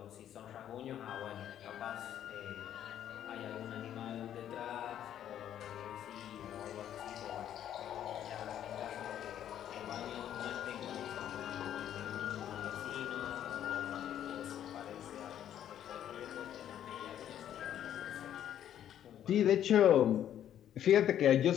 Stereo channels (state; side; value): quieter; right; 10.6 dB